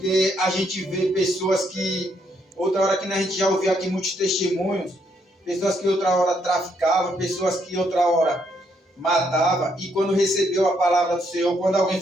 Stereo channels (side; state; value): both; normal; correlation 0.74